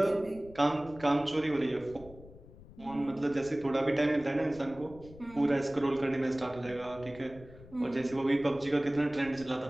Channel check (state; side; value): noise; left; rumble, 19 dB below the sound